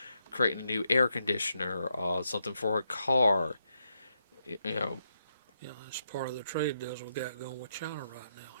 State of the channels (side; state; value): both; inverted; correlation -0.81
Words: creating a new air conditioner, something for a car, you know, Yeah, that's part of the trade deals we got going with China right now.